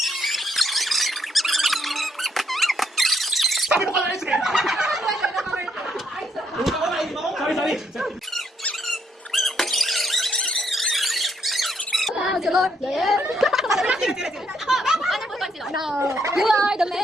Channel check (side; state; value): both; normal; correlation 0.74